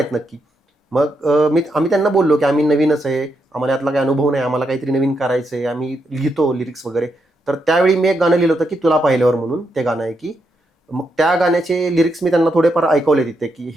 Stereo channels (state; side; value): normal; both; correlation 0.81